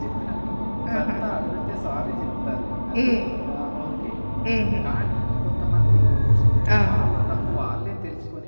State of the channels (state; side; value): inverted; both; correlation -1.00